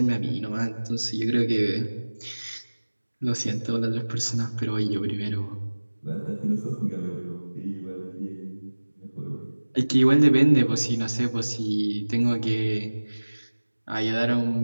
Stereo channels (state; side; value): inverted; both; correlation -1.00